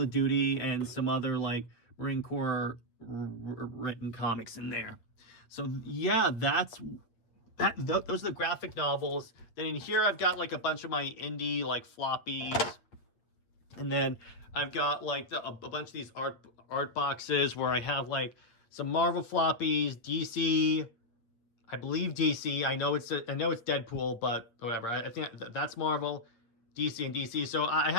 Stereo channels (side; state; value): right; late; 8.6 ms